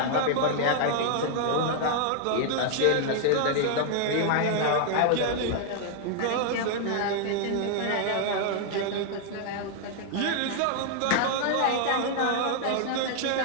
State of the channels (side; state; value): both; different; correlation 0.00